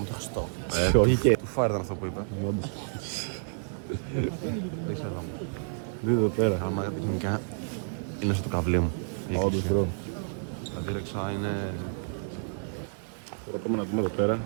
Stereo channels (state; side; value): silent; left; digital silence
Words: το Χριστό. Όχι και. Του φάρ ήταν αυτό που είπα. Όντως. Δεν ξέρω. Δείτε εδώ πέρα. Άμα τεχνικά είναι στο καβλί μου. Όντως, μπρο. Τα δίρεξα είναι... Τώρα πάμε να δούμε εδώ πέρα